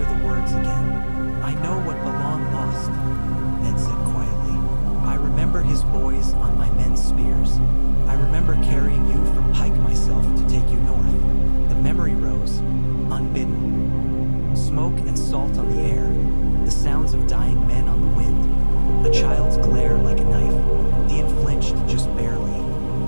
the words again." "I know what Balon lost," Ned said quietly. "I remember his boys on my men's spears. I remember carrying you from Pike myself to take you north." The memory rose, unbidden. Smoke and salt on the air, the sounds of dying men on the wind, a child's glare like a knife. Theon flinched just barely.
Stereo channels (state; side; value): inverted; both; correlation -1.00